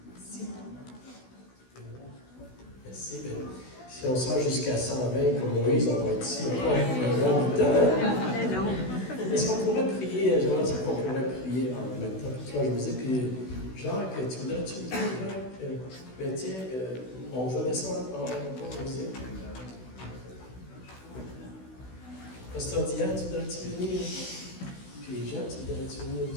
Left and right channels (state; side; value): late; right; 16 ms